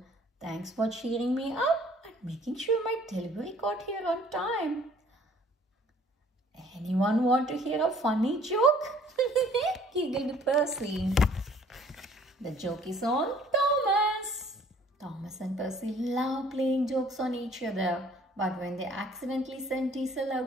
Thanks for cheering me up and making sure my delivery got here on time. Anyone want to hear a funny joke? Giggled Percy. The joke is on Thomas. Thomas and Percy love playing jokes on each other, but when they accidentally send Diesel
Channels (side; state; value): both; normal; correlation 0.57